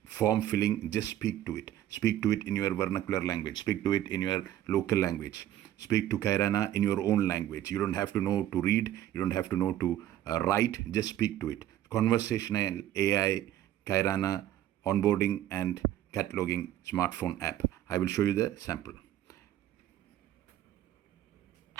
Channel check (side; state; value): left; quieter; 12.5 dB